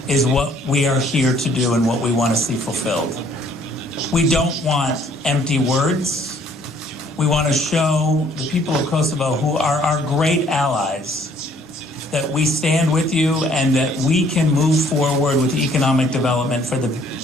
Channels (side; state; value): both; normal; correlation 0.61